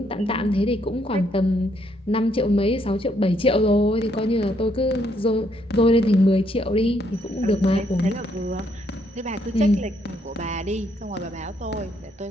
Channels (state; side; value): normal; both; correlation 0.72